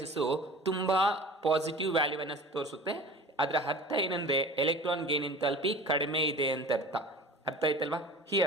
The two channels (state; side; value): normal; both; correlation 0.39